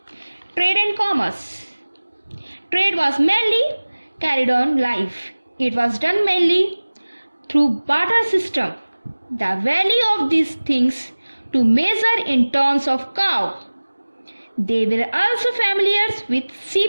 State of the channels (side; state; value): both; inverted; correlation -1.00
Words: Trade and commerce. Trade was mainly carried on live. It was done mainly through barter system. The value of these things to measure in terms of cow. They were also familiar with